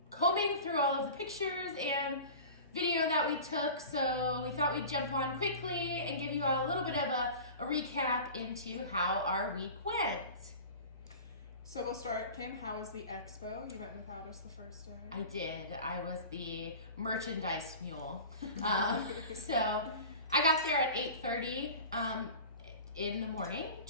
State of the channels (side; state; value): both; inverted; correlation -0.37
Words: combing through all of the pictures and video that we took, so we thought we'd jump on quickly and give you a little bit of a recap into how our week went. So we'll start, Kim, how was the expo? You went without us the first day. I did. I was the merchandise mule. So I got there at 8:30 in the morning